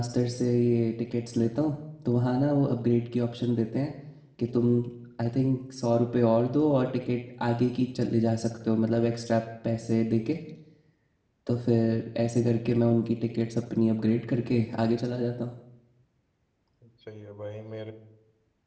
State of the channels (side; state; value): both; identical; correlation 1.00